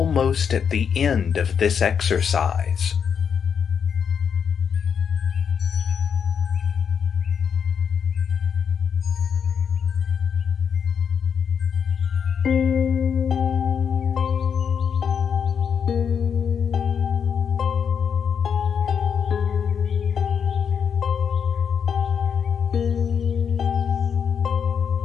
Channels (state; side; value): quieter; right; 7.1 dB